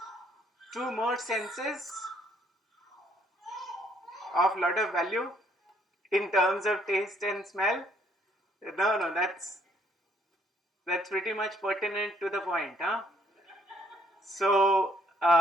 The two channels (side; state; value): both; normal; correlation 0.66